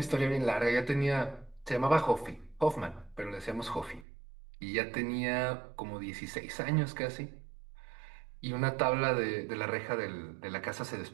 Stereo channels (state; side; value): drops out; left; at 4.0 s